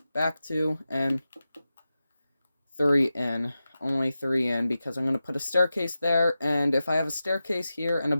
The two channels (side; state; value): both; inverted; correlation -0.92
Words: back 2, and 3 in. Only 3 in, because I'm going to put a staircase there, and if I have a staircase here and a